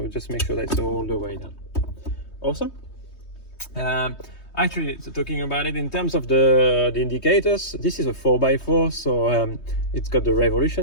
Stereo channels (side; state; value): right; late; 3.2 ms